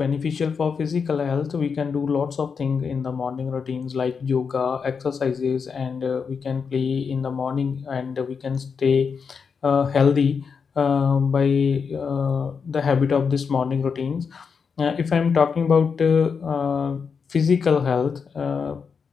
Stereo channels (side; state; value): right; quieter; 5.9 dB